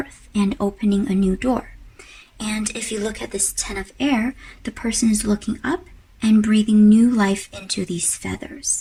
and opening a new door. And if you look at this 10 of Air, the person is looking up and breathing new life into these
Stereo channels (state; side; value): identical; both; correlation 1.00